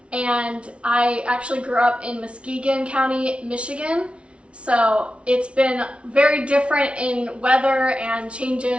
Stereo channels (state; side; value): late; left; 0.060 ms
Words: And I actually grew up in Muskegon County, Michigan. So it's been very different in weather and